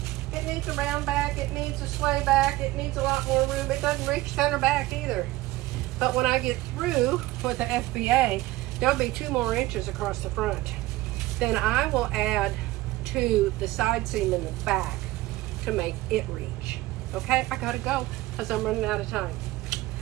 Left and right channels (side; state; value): left; quieter; 18.1 dB